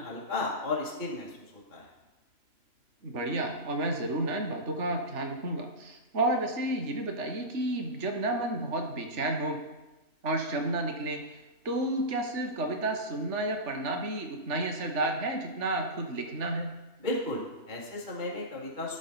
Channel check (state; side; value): late; left; 3.0 ms